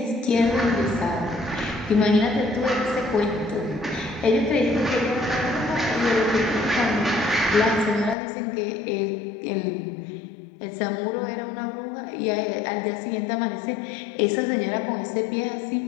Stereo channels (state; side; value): drops out; right; at 8.2 s